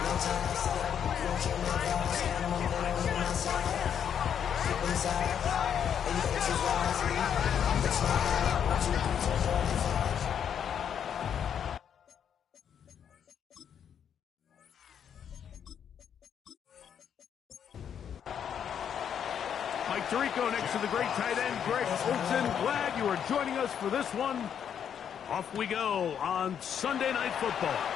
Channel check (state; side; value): quieter; right; 8.4 dB